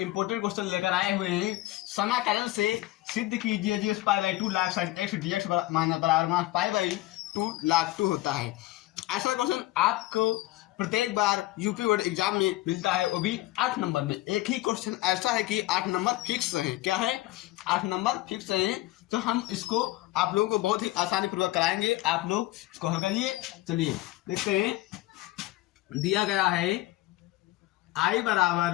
क्वेश्चन लेकर आए हुए हैं। समाकलन से सिद्ध कीजिए जी pi by 2 log sine X D X बराबर पाई बाई 2 लाख 2 होता है। ऐसा क्वेश्चन आपको प्रत्येक बार यूपी बोर्ड एग्जाम में मिलता है, वो भी 8 नंबर में। एक ही क्वेश्चन ऐसा है कि 8 नंबर फिक्स है। क्या है? 8 नंबर फिक्स है। तो हम इसको आप लोगों को बहुत ही आसानी पूर्वक कराएंगे। आप लोग इसको हल करिए। चलिए देखते हैं। दिया गया है आई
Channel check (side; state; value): right; quieter; 17.6 dB